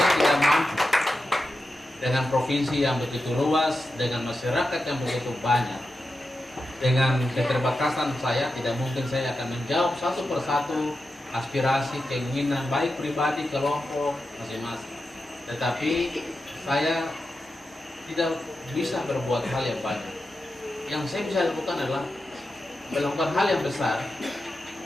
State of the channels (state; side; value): normal; both; correlation 0.90